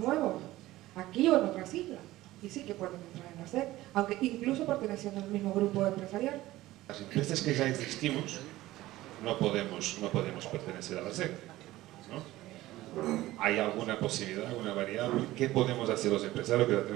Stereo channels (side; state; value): left; quieter; 16.7 dB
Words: aquí o en otras islas, y sí que pueden entrar en la SEC, aunque incluso perteneciendo al mismo grupo empresarial. Las empresas que ya existimos no podemos pertenecer a la SEC, ¿no? ¿Hay alguna posibilidad, alguna variable? ¿Qué podemos hacer los empresarios que ya